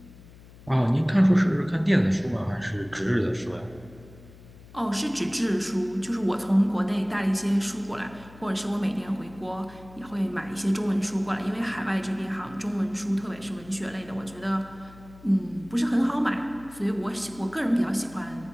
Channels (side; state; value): left; noise; hum, 21 dB below the sound